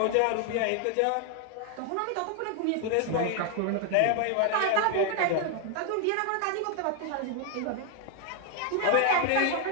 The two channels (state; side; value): different; both; correlation 0.00